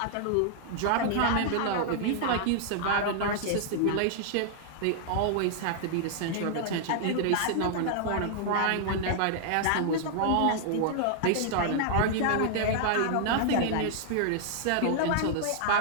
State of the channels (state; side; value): different; both; correlation -0.01